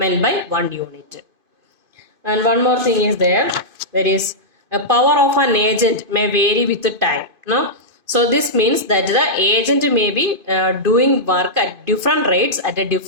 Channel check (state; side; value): late; left; 2.5 ms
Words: by 1 unit. And one more thing is there. There is a power of an agent may vary with the time. No? So this means that the agent may be doing work at different rates at a